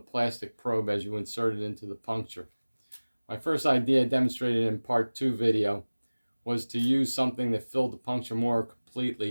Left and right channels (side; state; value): both; inverted; correlation -1.00